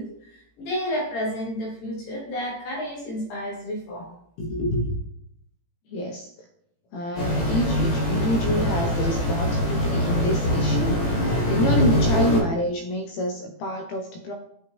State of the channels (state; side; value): late; right; 18 ms